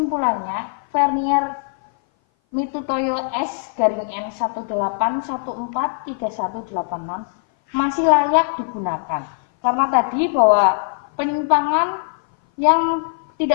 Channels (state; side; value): silent; right; 58 dB below the other